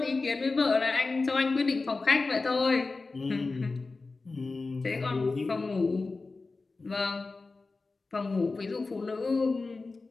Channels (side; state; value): right; quieter; 3.8 dB